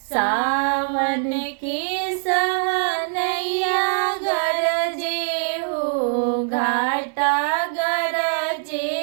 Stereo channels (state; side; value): silent; left; digital silence